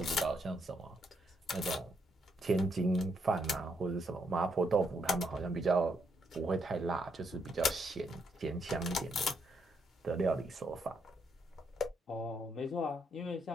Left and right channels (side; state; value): both; normal; correlation 0.76